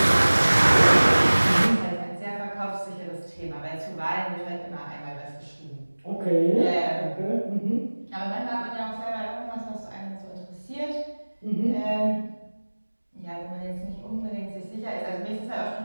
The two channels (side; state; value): both; inverted; correlation -1.00